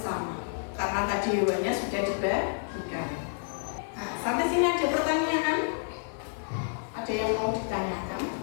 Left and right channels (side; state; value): right; silent; 57 dB below the other